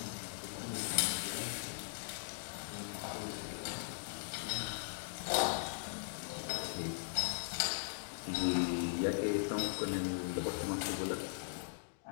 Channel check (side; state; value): right; silent; digital silence